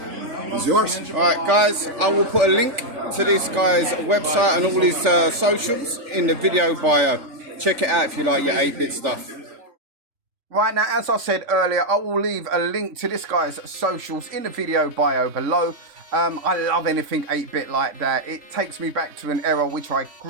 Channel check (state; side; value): late; left; 3.4 ms